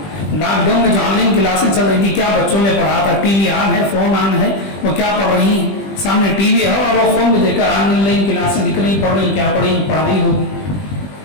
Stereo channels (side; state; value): right; late; 20 ms